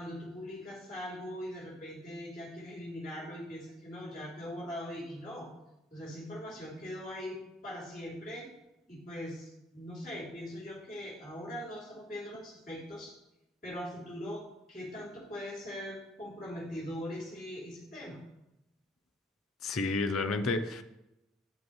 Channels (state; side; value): normal; both; correlation 0.60